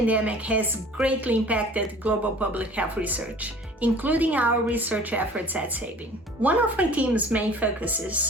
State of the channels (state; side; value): normal; both; correlation 0.47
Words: has greatly impacted global public health research, including our research efforts at Sabin. One of my team's main